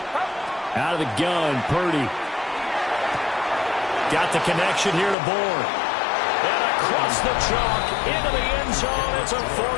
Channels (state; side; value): drops out; right; at 5.2 s